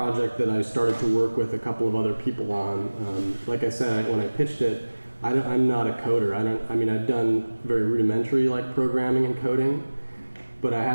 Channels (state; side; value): inverted; both; correlation -1.00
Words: that I started to work with a couple of other people on. Like I said, when I pitched it, I'm not a coder. I've done very rudimentary like programming and coding, but I